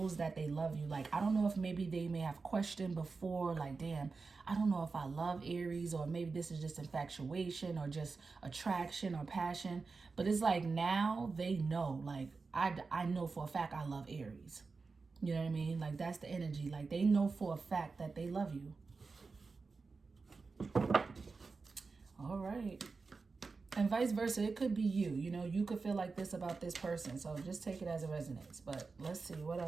that they love you. Like, I don't know if maybe they may have questioned before, like, damn, I don't know if I love Aries, or maybe this is just infatuation or just attraction or passion. But it's like, now they know, like, I know for a fact I love Aries. You know what I mean? Like, that's the energy. Like, they know for a fact that they love you. All right. And vice versa, it could be you. You know, you could feel like this about this person. So just take it as it resonates. But let's see what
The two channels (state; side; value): quieter; left; 4.3 dB